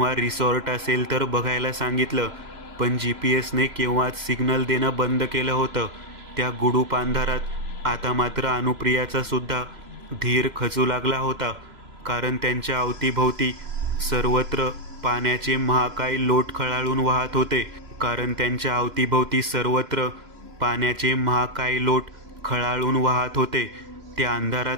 रिसॉर्ट असेल तर बघायला सांगितलं, पण GPS ने केव्हाच सिग्नल देणं बंद केलं होतं. त्या गुडूप अंधारात आता मात्र अनुप्रियाचा सुद्धा धीर खचू लागला होता, कारण त्यांच्या अवतीभोवती सर्वत्र पाण्याचे महाकाय लोट खळाळून वाहत होते. त्या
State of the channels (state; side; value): late; left; 3.0 ms